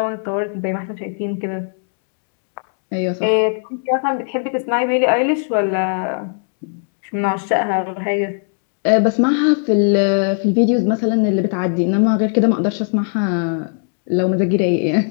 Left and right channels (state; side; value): silent; right; 67 dB below the other